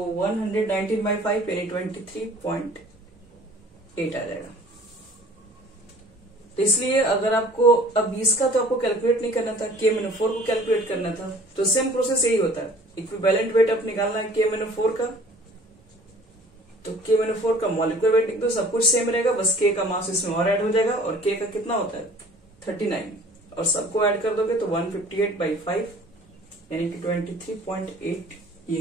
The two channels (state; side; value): normal; both; correlation 0.50